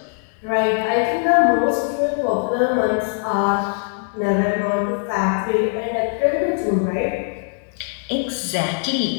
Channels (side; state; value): right; silent; 57 dB below the other